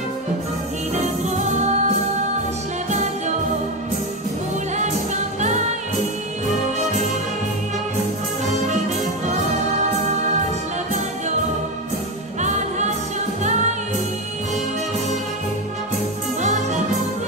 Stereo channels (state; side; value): normal; both; correlation 0.14